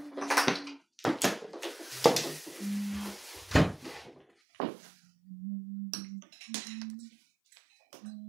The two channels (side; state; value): left; drops out; at 4.2 s